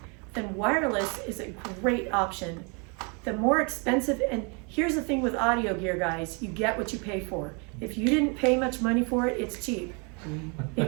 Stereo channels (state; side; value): quieter; left; 33.7 dB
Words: then wireless is a great option. The more expensive, and here's the thing with audio gear, guys, you get what you pay for. If you didn't pay much money for it, it's cheap.